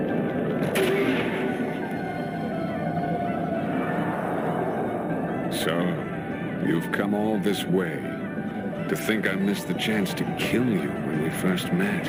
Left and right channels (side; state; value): both; identical; correlation 1.00